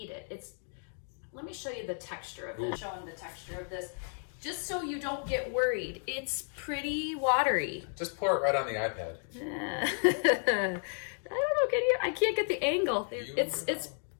it. Let me show you the texture of this. Showing the texture of this. Just so you don't get worried. It's pretty watery. Just pour it right on the iPad. I don't know, I can't get the angle. It's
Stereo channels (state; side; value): silent; right; 56 dB below the other